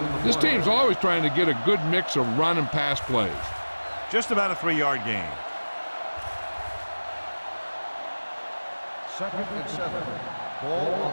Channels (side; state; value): both; inverted; correlation -1.00